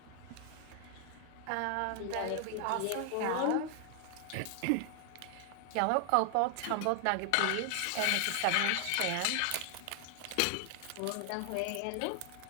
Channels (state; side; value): different; both; correlation 0.00